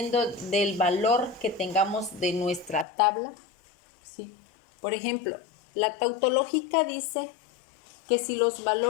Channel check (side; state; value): right; drops out; at 2.9 s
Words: del valor que tengamos de nuestra tabla. ¿Sí? Por ejemplo, la tautológica dice que si los